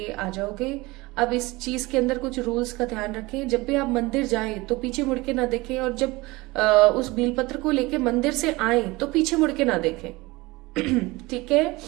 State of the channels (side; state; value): left; quieter; 22.0 dB